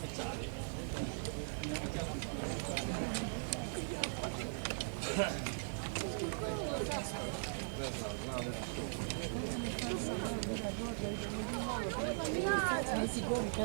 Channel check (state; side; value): silent; left; digital silence